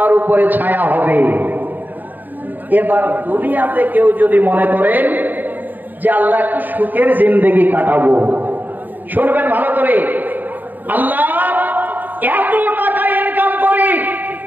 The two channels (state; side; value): late; left; 0.087 ms